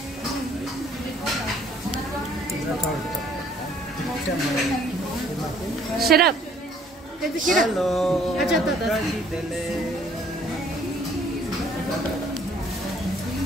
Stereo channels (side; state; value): both; normal; correlation 0.60